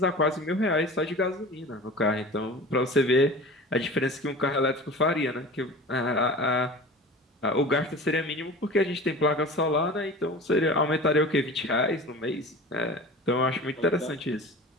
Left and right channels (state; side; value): normal; both; correlation 0.37